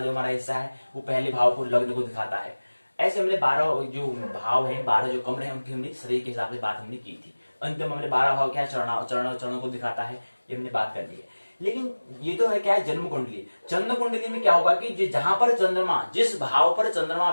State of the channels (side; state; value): both; inverted; correlation -1.00